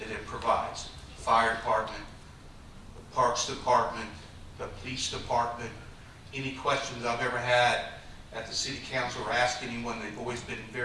it provides. Fire department, the parks department, the police department. Any questions I've ever had at the city council or asked anyone, they've always been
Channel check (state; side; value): identical; both; correlation 1.00